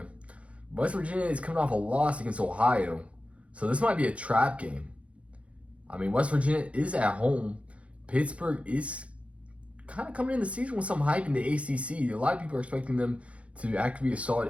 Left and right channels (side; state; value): left; late; 0.063 ms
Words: West Virginia is coming off a loss against Ohio. So this might be a trap game. I mean, West Virginia is at home. Pittsburgh is kind of coming in the season with some hype in the ACC. A lot of people are expecting them to actually be a solid